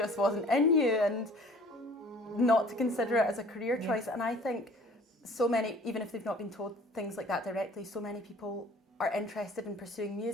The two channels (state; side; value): normal; both; correlation 0.50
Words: wasn't in you and not to consider it as a career choice. And I think so many, even if they've not been told things like that directly, so many people are interested in pursuing